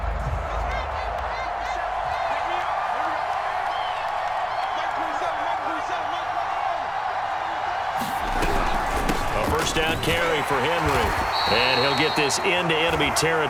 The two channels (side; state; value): both; identical; correlation 1.00